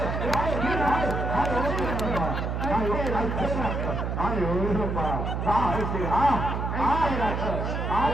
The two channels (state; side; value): noise; right; hum, 2 dB below the sound